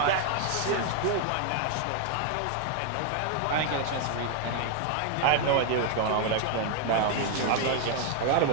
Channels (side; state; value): both; different; correlation 0.00